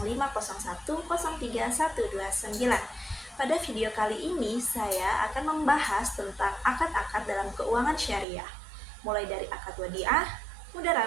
20240501031129. Pada video kali ini saya akan membahas tentang akad-akad dalam keuangan syariah, mulai dari akad wadiah,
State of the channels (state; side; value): drops out; left; at 8.2 s